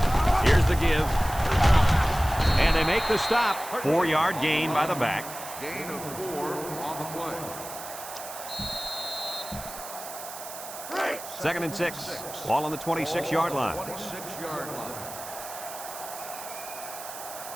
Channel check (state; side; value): noise; right; hiss, 11 dB below the sound